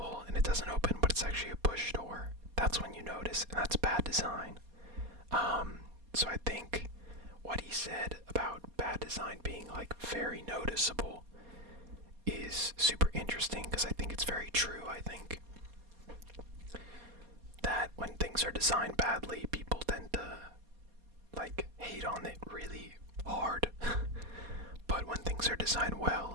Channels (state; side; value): late; left; 4.2 ms